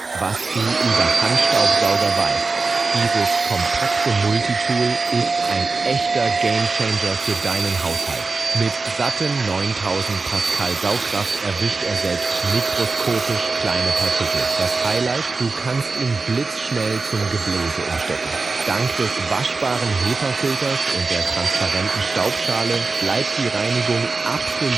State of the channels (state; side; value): quieter; left; 3.9 dB